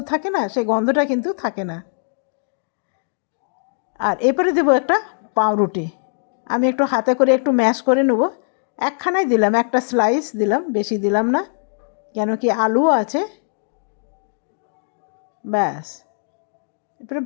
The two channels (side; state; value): right; silent; digital silence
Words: থাকে না, সেই গন্ধটা কিন্তু থাকে না। আর এরপরে দেবো একটা পাউরুটি। আমি একটু হাতে করে একটু ম্যাশ করে নেব। একখানাই দিলাম, একটা স্লাইস দিলাম, বেশি দিলাম না, কেন কি আলুও আছে, ব্যাস। এরপরে